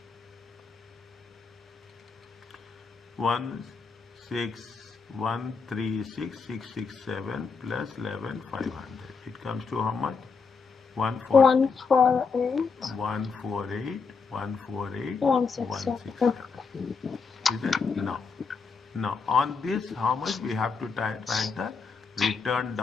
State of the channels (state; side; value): quieter; right; 5.1 dB